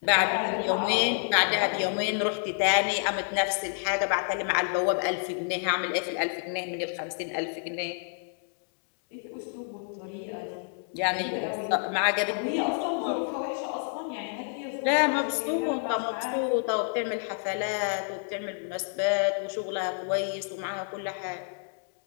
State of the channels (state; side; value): silent; right; 59 dB below the other